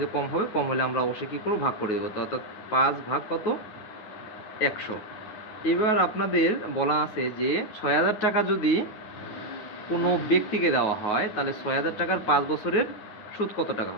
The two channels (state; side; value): late; right; 9.4 ms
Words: কম হবে, কম হলে আমরা অবশ্যই কী করবো, ভাগ করে দেবো। তো অর্থাৎ 5 ভাগ কত, 100। এবার আপনাদের বলা আছে যে 6,000 টাকা যদি কোনো ব্যক্তিকে দেওয়া হয়, তাহলে 6,000 টাকার 5 বছরের সুদ কত টাকা